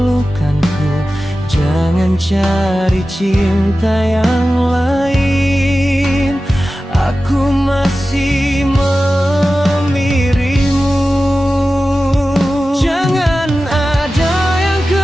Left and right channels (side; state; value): both; normal; correlation 0.94